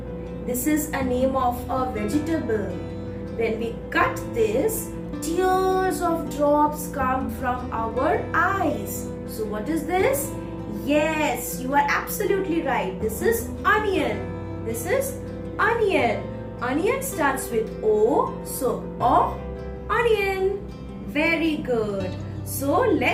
This is a name of a vegetable. When we cut this, tears of drops come from our eyes. So what is this? Yes, you are absolutely right. This is onion. This is onion. Onion starts with O. So O, onion. Very good. So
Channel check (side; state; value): both; identical; correlation 1.00